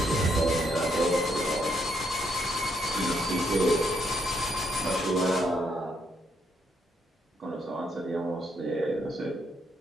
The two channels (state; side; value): normal; both; correlation 0.75